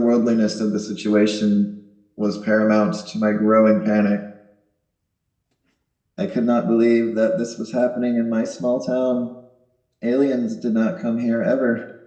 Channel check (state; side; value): identical; both; correlation 1.00